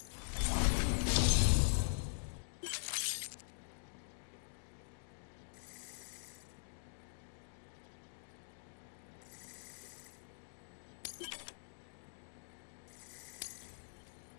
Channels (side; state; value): right; silent; digital silence